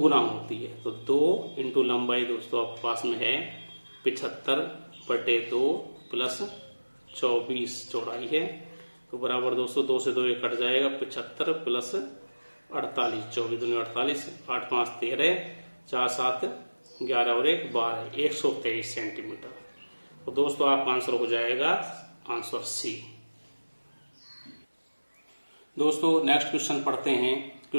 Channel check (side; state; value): both; inverted; correlation -1.00